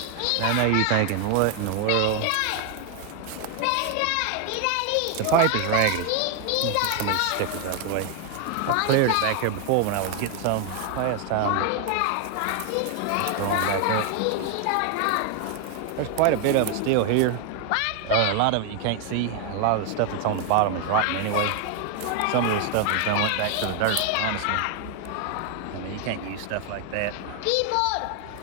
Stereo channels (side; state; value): both; different; correlation 0.01